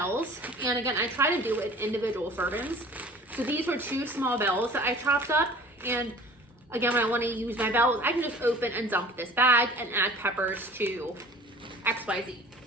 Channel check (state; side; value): normal; both; correlation 0.45